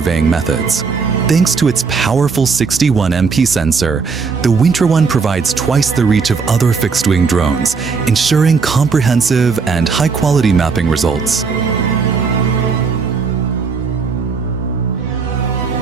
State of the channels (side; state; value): left; quieter; 5.1 dB